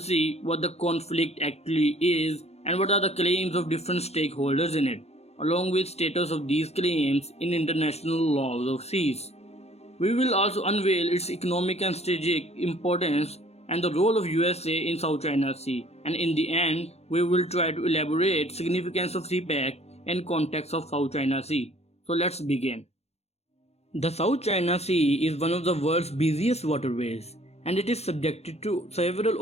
what the conflict actually is and what are the claims of different stakeholders in it, along with status of these claims in international laws of seas. We will also unveil its economic and strategic importance and the role of USA in South China Sea, and in the end, we will try to elaborate significance of CPEC and context of South China Sea. So let's begin. The South China Sea is one of the world's busiest waterways, and it is subjected to several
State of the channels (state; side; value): late; right; 0.31 ms